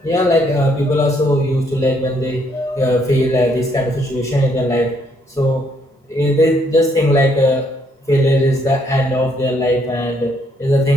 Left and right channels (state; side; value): normal; both; correlation 0.70